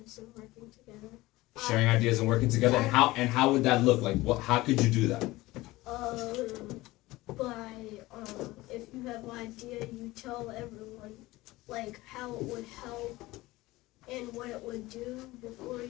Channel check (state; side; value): quieter; right; 19.1 dB